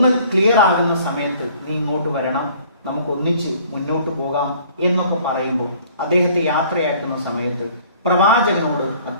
ക്ലിയർ ആകുന്ന സമയത്ത് നീ ഇങ്ങോട്ട് വരണം, നമുക്ക് ഒന്നിച്ച് മുന്നോട്ട് പോകാം എന്നൊക്കെ പറയുമ്പോൾ അദ്ദേഹത്തെ യാത്രയാക്കുന്ന സമയത്ത് പ്രവാചകനോട്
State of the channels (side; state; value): both; inverted; correlation -0.55